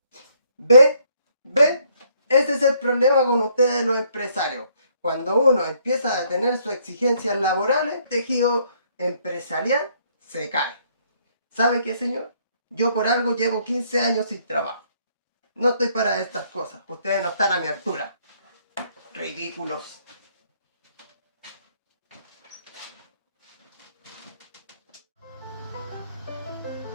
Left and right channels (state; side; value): inverted; both; correlation -0.68